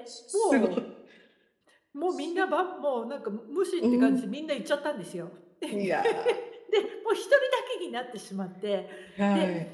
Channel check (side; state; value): both; identical; correlation 1.00